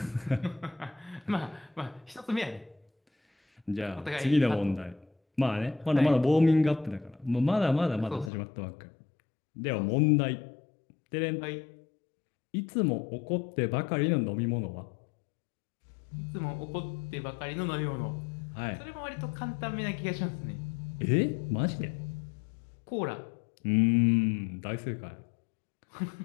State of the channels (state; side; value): drops out; right; at 8.3 s